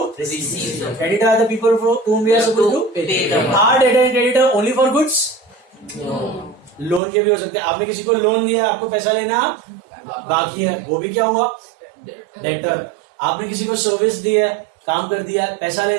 receive. Creditor are the people from whom we are supposed to pay. Are debtor and creditor only for goods? No. Loan के भी हो सकते हैं. आपने किसी को लोन दिया, आपको पैसा लेना बाकी है, वो भी क्या हुआ? डेटर. आपने किसी को सर्विस दी है, काम कर दिया है, पैसा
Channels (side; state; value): left; drops out; at 7.0 s